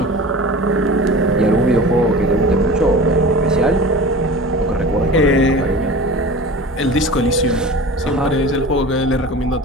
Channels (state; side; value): normal; both; correlation 0.36